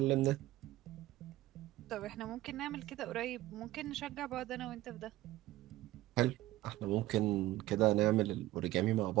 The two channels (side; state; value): left; quieter; 16.5 dB